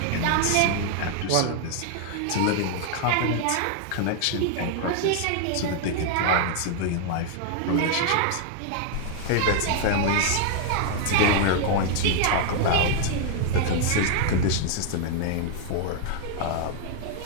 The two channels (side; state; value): both; different; correlation 0.00